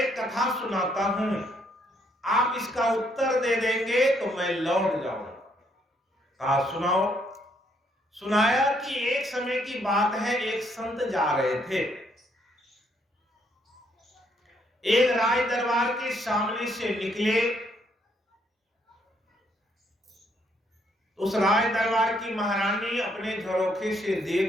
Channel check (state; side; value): normal; both; correlation 0.71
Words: कथा सुनाता हूं, आप इसका उत्तर दे देंगे तो मैं लौट जाऊंगा। कहा सुनाओ। सुनाया कि एक समय की बात है, एक संत जा रहे थे, एक राज दरबार के सामने से निकले। उस राज दरबार की महारानी अपने झरोखे से